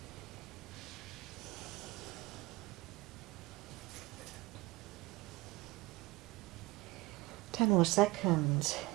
Ten more seconds.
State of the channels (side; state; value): left; quieter; 21.5 dB